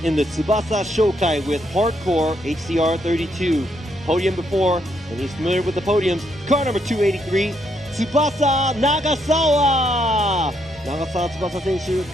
in the Tsubasa Shokai with Hardcore HCR32. Podium before, and he's familiar with the podiums. Car number 283, Tsubasa Nagasawa. 長澤翼選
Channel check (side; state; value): both; normal; correlation 0.75